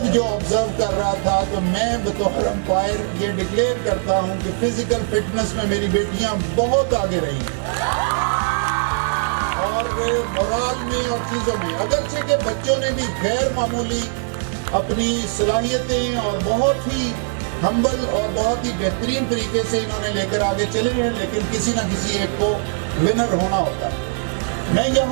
جو آبزرو کر رہا تھا تو میں بطور امپائر یہ ڈکلیئر کرتا ہوں کہ فزیکل فٹنس میں میری بیٹیاں بہت آگے رہی اور مورال میں اور چیزوں میں، اگرچہ کہ بچوں نے بھی غیر معمولی اپنی صلاحیتیں اور بہت ہی ہمبل اور بہت ہی بہترین طریقے سے انہوں نے لے کر آگے چلے ہیں، لیکن کسی نہ کسی ایک کو ونر ہونا ہوتا ہے۔ میں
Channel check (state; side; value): silent; left; 57 dB below the other